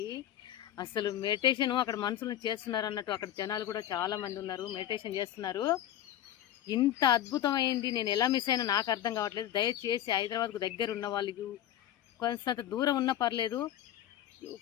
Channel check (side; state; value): right; quieter; 11.9 dB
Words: అసలు మెడిటేషన్ అక్కడ మనుషులను చేస్తున్నారు అన్నట్టు అక్కడ జనాలు కూడా చాలా మంది ఉన్నారు, మెడిటేషన్ చేస్తున్నారు. ఇంత అద్భుతమైంది. నేను ఎలా మిస్ అయినా నాకు అర్థం కావట్లేదు. దయచేసి హైదరాబాద్కు దగ్గర ఉన్న వాళ్ళకి, కొంత దూరం ఉన్నా పర్లేదు,